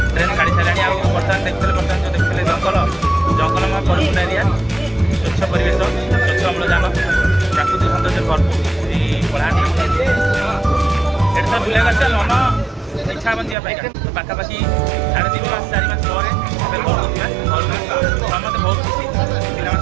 ट्रेन गाड़ी छाड़ा बर्तमान देखते बर्तमान जो देखते जंगलमय परिपूर्ण एरिया स्वच्छ परिवेश स्वच्छ अम्लजान प्राकृतिक सौंदर्य भरपूर कलाहांडी ये तो बुला मन इच्छा बन जाए तो पाखापाखि 3.5 मास 4 मास पर समस्त बहुत खुशी पिला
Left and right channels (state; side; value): drops out; left; at 13.6 s